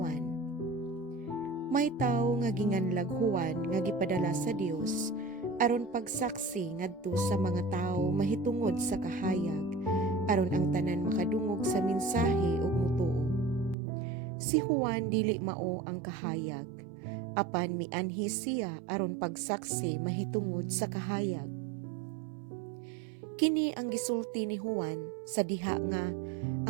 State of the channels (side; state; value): left; drops out; at 13.8 s